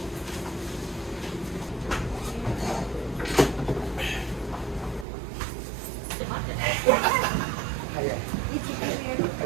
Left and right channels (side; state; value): left; drops out; at 5.1 s